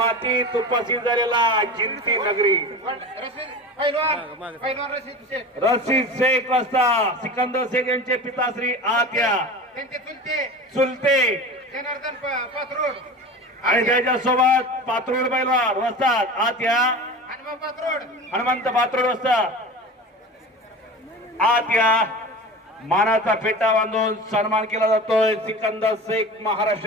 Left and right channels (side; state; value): both; normal; correlation 0.32